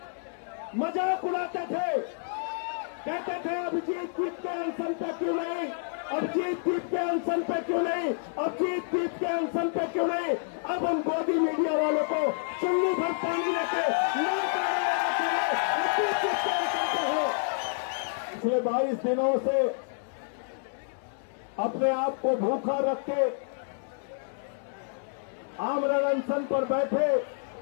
मजाक उड़ाते थे, कहते थे अभिजीत दीप के अनशन पे क्यों नहीं, अभिजीत दीप के अनशन पे क्यों नहीं, अभिजीत दीप के अनशन पे क्यों नहीं। अब हम गोदी मीडिया वालों को चुन्नी भर पानी लेके पिछले 22 दिनों से अपने आप को भूखा रख के आमरण अनशन पर बैठे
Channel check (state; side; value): silent; right; digital silence